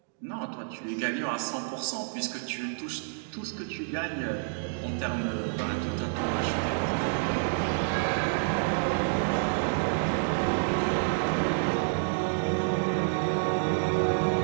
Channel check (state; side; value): silent; left; digital silence